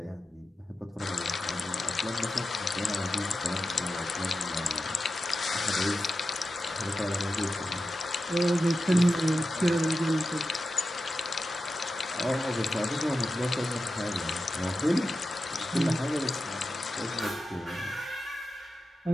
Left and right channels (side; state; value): both; normal; correlation 0.91